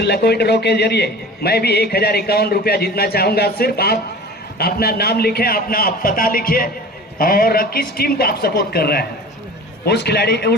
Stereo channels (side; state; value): both; normal; correlation 0.39